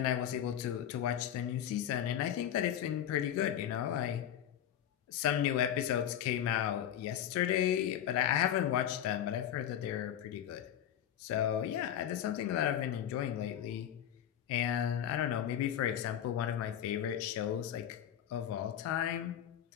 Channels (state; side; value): quieter; right; 10.4 dB